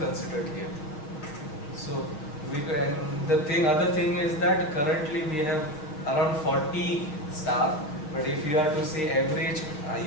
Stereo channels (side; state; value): right; late; 6.6 ms